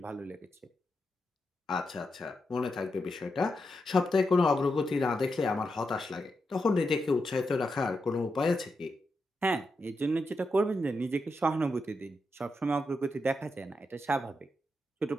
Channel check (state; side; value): normal; both; correlation 0.86